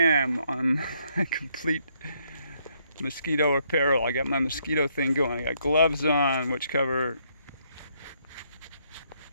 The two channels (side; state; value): both; inverted; correlation -0.72